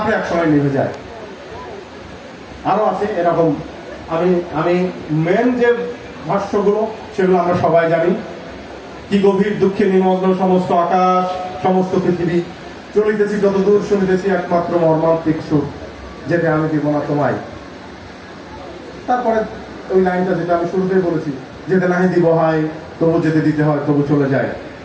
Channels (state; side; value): identical; both; correlation 1.00